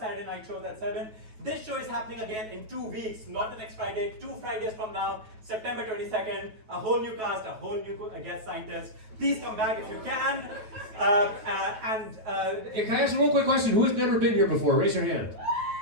night shows at 7. This show is happening again in 2 weeks, not the next Friday, 2 Fridays from now, September 22nd. A whole new cast, a whole new guest scientist. Please come back if you can. Hey, can I ask a real quick question? Who has never been here before? Raise your hand.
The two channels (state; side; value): late; left; 9.2 ms